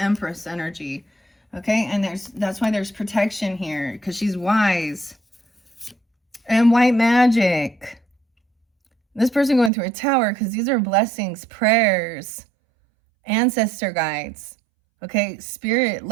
energy. Okay, and that's why there's protection here, because she's wise. And white magic. This person going through a tower, because these are blessings, prayers, ancestor guides. Okay, spirit,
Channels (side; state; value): left; drops out; at 9.7 s